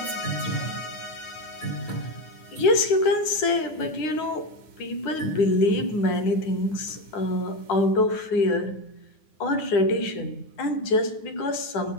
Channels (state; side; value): late; right; 9.5 ms